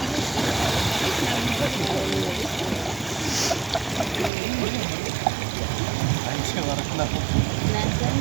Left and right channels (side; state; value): left; drops out; at 4.3 s